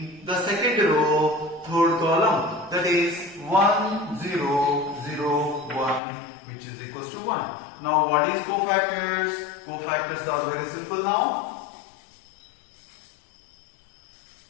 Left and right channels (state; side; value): drops out; right; at 6.0 s